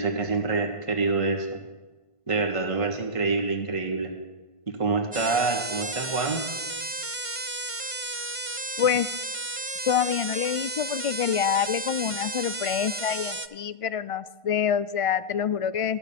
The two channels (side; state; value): right; late; 1.5 ms